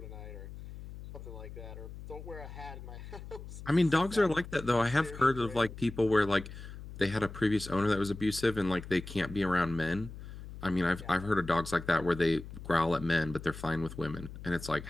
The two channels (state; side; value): noise; left; hum, 12 dB below the sound